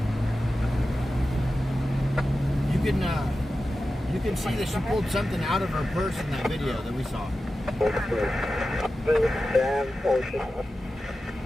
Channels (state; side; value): normal; both; correlation 0.93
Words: You can see that she pulled something out of her purse in that video that we saw.